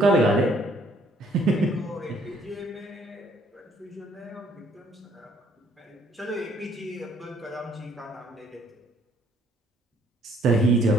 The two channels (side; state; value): both; normal; correlation 0.63